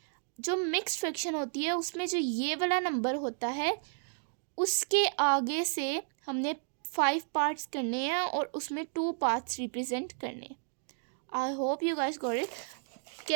जो मिक्स्ड फ्रैक्शन होती है उसमें जो ये वाला नंबर होता है उसके आगे से हमने 5 पार्ट्स करने हैं और उसमें 2 पार्ट्स रिप्रेजेंट करने हैं। I hope you guys got it.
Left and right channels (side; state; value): left; silent; 56 dB below the other